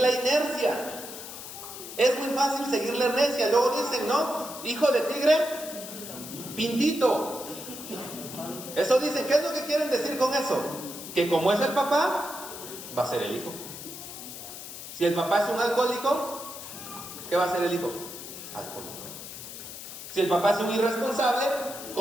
inercia. Es muy fácil seguir la inercia. Luego dicen, ¿no? Hijo de tigre, pintito. Eso dicen, ¿qué es lo que quieren decir con eso? Que como es el papá, va a ser el hijo. Si el papá es un alcohólico, ¿qué va a ser el hijo? Alcohólico. Si el papá es un irresponsable,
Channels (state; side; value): noise; left; hiss, 11 dB below the sound